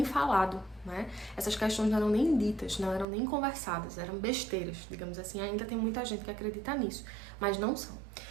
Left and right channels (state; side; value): drops out; left; at 3.1 s